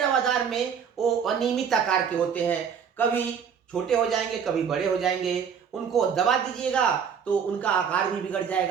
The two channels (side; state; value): left; quieter; 7.3 dB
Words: में वो अनियमित आकार के होते हैं, कभी छोटे हो जाएंगे कभी बड़े हो जाएंगे। उनको दबा दीजिएगा तो उनका आकार भी बिगड़